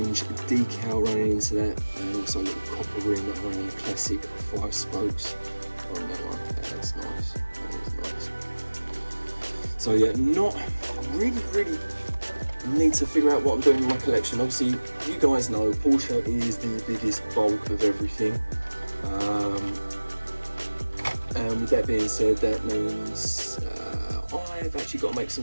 decal running into that, and also a little copper rim around the classic 5 spokes on that one. That's nice, that is nice. So yeah, not really need to figure out what I'm doing in my collection. Obviously, you guys know Porsche is the biggest bulk of everything. And with that being said, that means I've actually got to make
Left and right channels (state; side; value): inverted; both; correlation -1.00